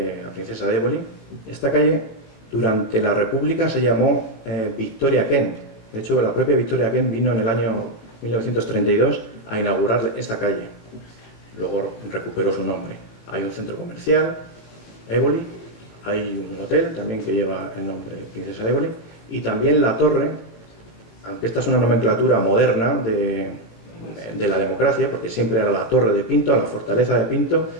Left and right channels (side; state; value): right; late; 18 ms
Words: Princesa de Éboli. Esta calle durante la República se llamó Victoria Kent. De hecho, la propia Victoria Kent vino en el año 1932 a inaugurar esta calle. Luego recuperó su nombre. Hay un centro comercial, Éboli, hay un hotel también que lleva el nombre Princesa de Éboli, y también la torre, aunque esta es una nomenclatura moderna de la democracia, porque siempre era la Torre de Pinto, la fortaleza de Pinto,